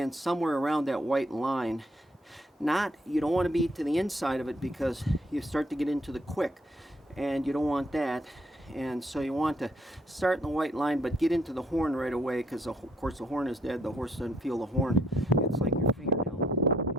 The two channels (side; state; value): both; normal; correlation 0.69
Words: somewhere around that white line. You don't want to be to the inside of it, because you start to get into the quick, and you don't want that. And so you want to start in the white line, but get into the horn right away, because of course the horn is dead. The horse doesn't feel the horn. It's like your fingernail.